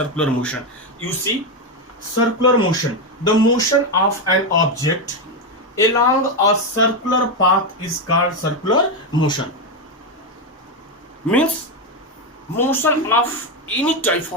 motion? You see, circular motion, the motion of an object along a circular path is called circular motion. Means motion of any type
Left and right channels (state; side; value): normal; both; correlation 0.09